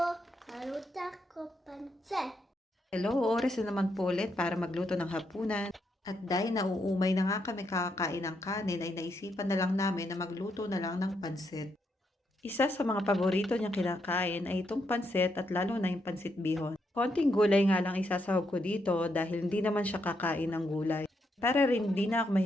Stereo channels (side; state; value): both; normal; correlation 0.79